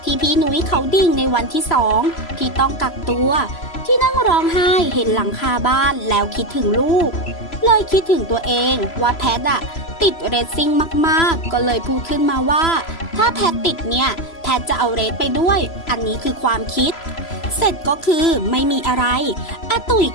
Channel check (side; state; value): right; late; 3.0 ms